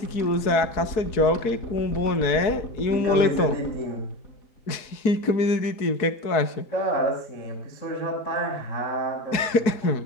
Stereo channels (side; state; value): right; late; 4.6 ms